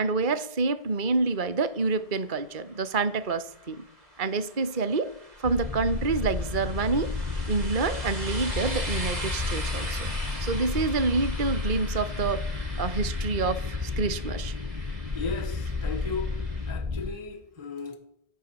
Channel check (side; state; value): left; late; 1.7 ms